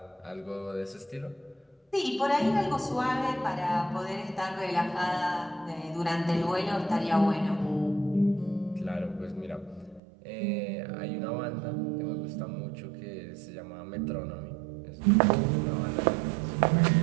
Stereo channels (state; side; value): drops out; left; at 10.0 s